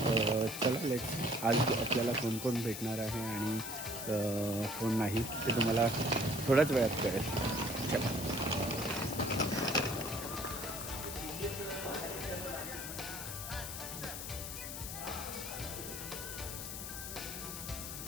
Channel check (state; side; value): noise; left; hiss, 7 dB below the sound